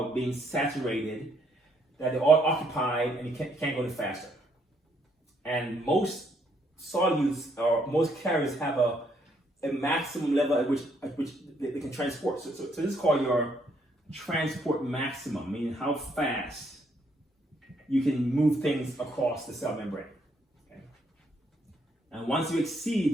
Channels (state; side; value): normal; both; correlation 0.71